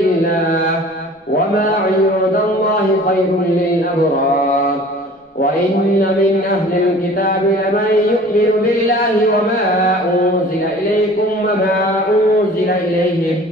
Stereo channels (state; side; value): normal; both; correlation 0.46